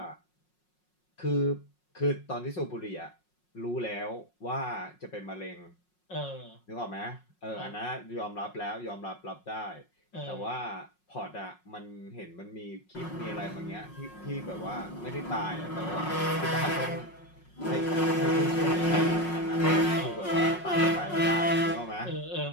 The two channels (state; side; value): late; right; 5.5 ms